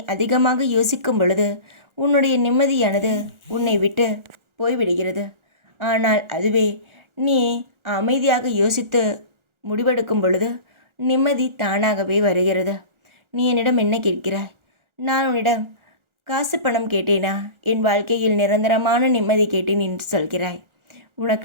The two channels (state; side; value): late; left; 1.4 ms